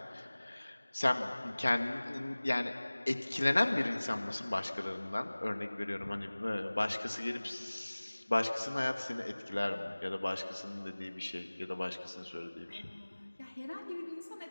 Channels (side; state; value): both; inverted; correlation -1.00